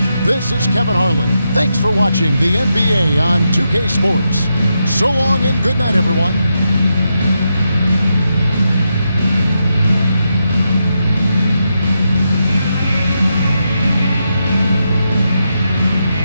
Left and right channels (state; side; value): inverted; both; correlation -0.85